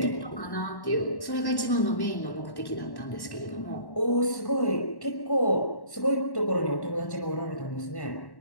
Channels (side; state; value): right; late; 1.1 ms